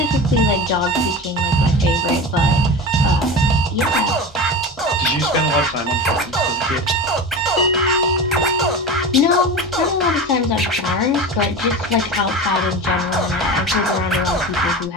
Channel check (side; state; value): both; normal; correlation 0.28